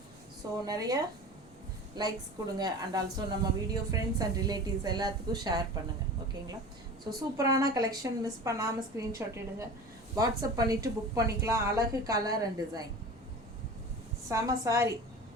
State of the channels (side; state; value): both; normal; correlation 0.36